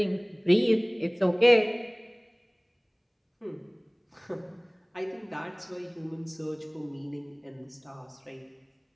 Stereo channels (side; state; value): both; identical; correlation 1.00